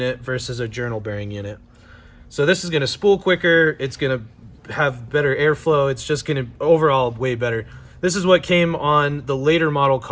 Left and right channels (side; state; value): both; identical; correlation 1.00